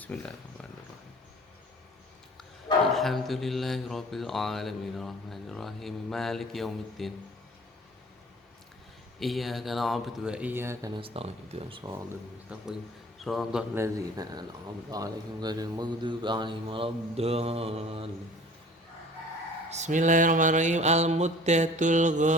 Alhamdulillahi rabbil alamin arrahmanir rahim maliki yaumiddin. إياك نعبد وإياك نستعين اهدنا الصراط المستقيم صراط الذين أنعمت عليهم غير المغضوب عليهم ولا الضالين Bismillahirrahmanirrahim. Al-muddatul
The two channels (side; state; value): both; normal; correlation 0.47